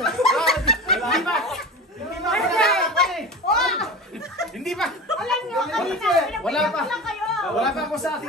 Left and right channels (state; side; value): normal; both; correlation 0.31